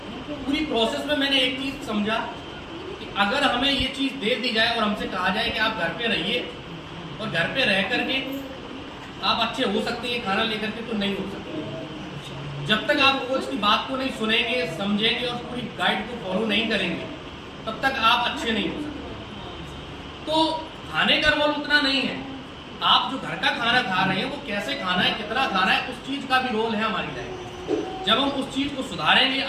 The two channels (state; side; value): identical; both; correlation 1.00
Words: पूरी प्रोसेस में मैंने एक चीज़ समझा कि अगर हमें ये चीज़ दे दी जाए और हमसे कहा जाए कि आप घर पे रहिए और घर पे रह करके आप अच्छे हो सकते हैं खाना लेकर के, तो नहीं हो सकते। जब तक आप कोच की बात को नहीं सुनेंगे, समझेंगे और पूरी गाइड को फॉलो नहीं करेंगे तब तक आप अच्छे नहीं हो सकते। तो खाने का रोल उतना नहीं है, आप जो घर का खाना खा रहे हैं वो कैसे खाना है, कितना खाना है, उस चीज़ का भी रोल है हमारी लाइफ में। जब हम उस चीज़ को सुधारेंगे,